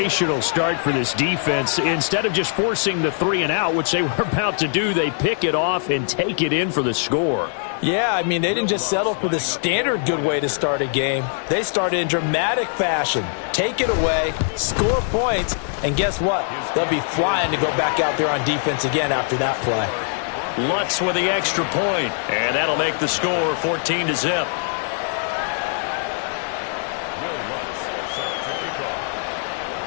start for this defense. Instead of just forcing the 3 and out, which they were about to do, they pick it off and take it in for the score. Yeah, I mean, they didn't just settle for the standard good way to start a game. They started in dramatic fashion. Take it away, score points, and guess what? They'll be flying to go back out there on defense again after that play. Lutz with the extra point, and that'll make the score 14-0.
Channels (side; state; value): right; silent; 60 dB below the other